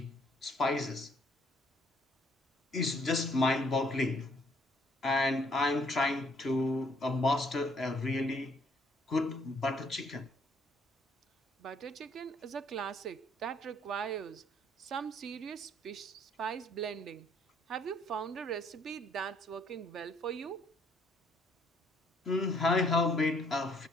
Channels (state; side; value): normal; both; correlation 0.65